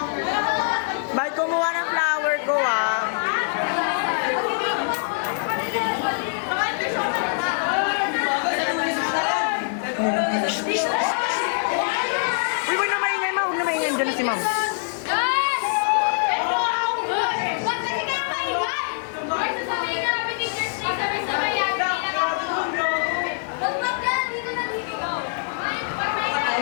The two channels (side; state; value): right; silent; 63 dB below the other